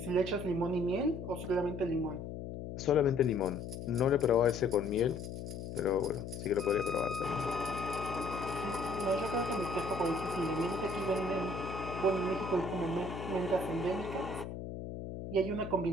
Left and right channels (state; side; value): noise; left; hum, 8 dB below the sound